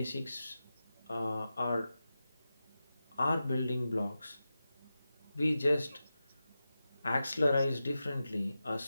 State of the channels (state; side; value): inverted; both; correlation -0.92